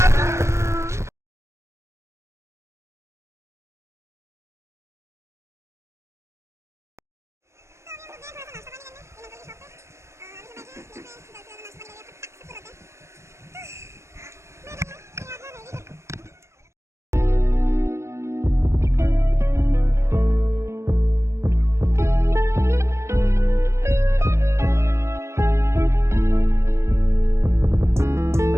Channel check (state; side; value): late; left; 0.14 ms